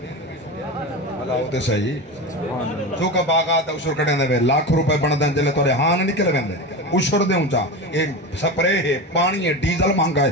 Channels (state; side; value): normal; both; correlation 0.24